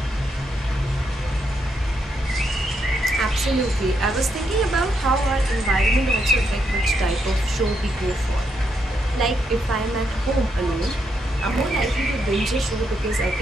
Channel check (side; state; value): both; normal; correlation 0.79